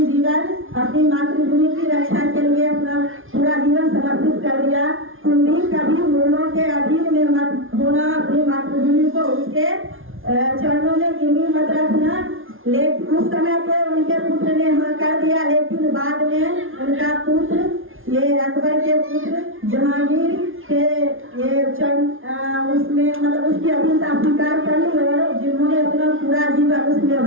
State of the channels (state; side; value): late; left; 0.59 ms